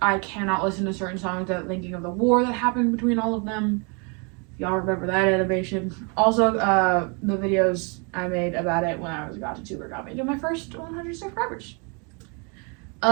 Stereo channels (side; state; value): left; quieter; 34.1 dB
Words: I cannot listen to certain songs without thinking of the war that happened between all of them. Y'all remember that animation. Also, the videos I made about it when I was godddddddd got me to my first 100 subscribers.